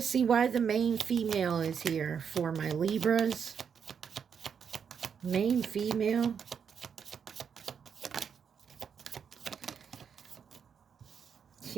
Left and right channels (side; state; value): left; quieter; 7.1 dB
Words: see why the main female is here for my Libras. Main female.